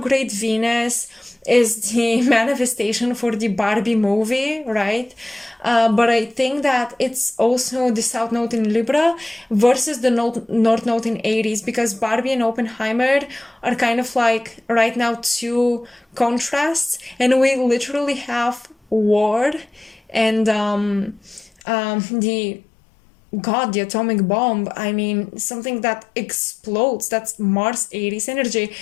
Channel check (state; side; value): drops out; right; at 21.5 s